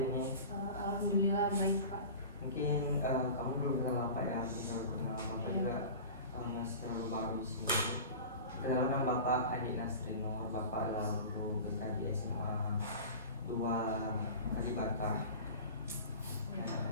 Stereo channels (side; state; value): both; inverted; correlation -0.35